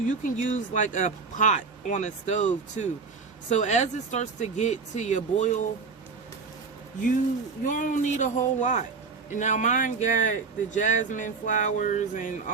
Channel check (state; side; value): quieter; left; 4.9 dB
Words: you can use like a pot on a stove too. So as it starts to get to your boil, you don't need a whole lot. And now mine got the jasmine flowers and